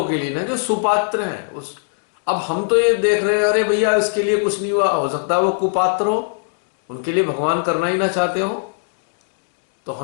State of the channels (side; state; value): right; silent; digital silence